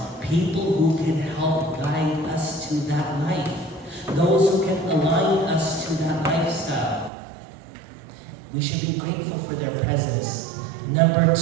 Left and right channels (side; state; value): left; drops out; at 7.1 s